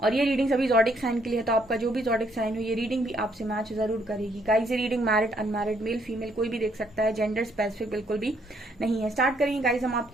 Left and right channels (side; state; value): both; normal; correlation 0.69